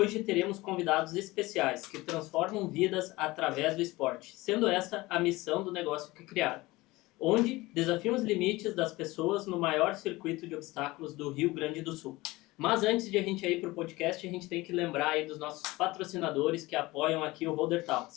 teremos convidados especiais que transformam vidas através do esporte, sendo esta a missão do negócio que criaram, onde desafiam os limites das pessoas no maior circuito de obstáculos do Rio Grande do Sul. Mas antes de a gente ir para o podcast, a gente tem que lembrar aí dos nossos patrocinadores que apoiam aqui o Holder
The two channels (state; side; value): quieter; right; 20.5 dB